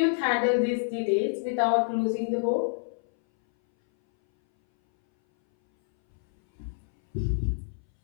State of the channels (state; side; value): silent; right; 60 dB below the other